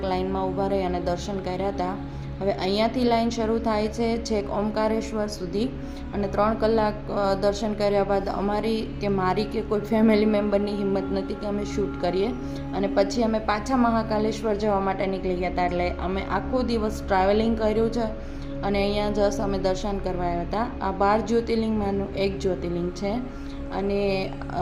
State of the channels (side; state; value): both; identical; correlation 1.00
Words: લાઇનમાં ઊભા રહી અને દર્શન કર્યા હતા. હવે અહીંયાથી લાઈન શરૂ થાય છે છેક ઓમકારેશ્વર સુધી. અને 3 કલાક દર્શન કર્યા બાદ મારી કે કોઈ ફેમિલી મેમ્બરની હિંમત નથી કે અમે શૂટ કરીએ. અને પછી અમે પાછા મહાકાલેશ્વર જવા માટે નીકળી ગયા હતા. એટલે અમે આખો દિવસ ટ્રાવેલિંગ કર્યું છે અને અહીંયા જસ્ટ અમે દર્શન કરવા આવ્યા હતા. આ 12 જ્યોતિર્લિંગમાંનું એક જ્યોતિર્લિંગ છે. અને